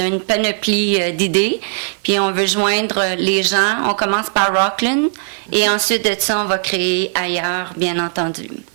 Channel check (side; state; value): left; silent; 55 dB below the other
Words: une panoplie d'idées, puis on veut joindre les gens. On commence par Rockland et ensuite de ça, on va créer ailleurs, bien entendu.